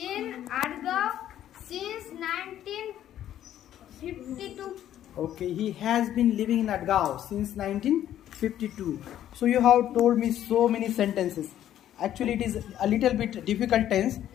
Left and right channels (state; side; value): quieter; right; 11.6 dB